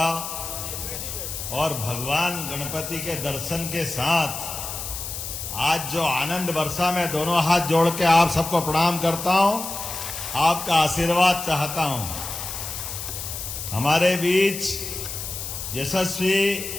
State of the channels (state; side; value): noise; left; hiss, 7 dB below the sound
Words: और भगवान गणपति के दर्शन के साथ आज जो आनंद बरसा, मैं दोनों हाथ जोड़ के आप सबको प्रणाम करता हूं, आपका आशीर्वाद चाहता हूं। हमारे बीच यशस्वी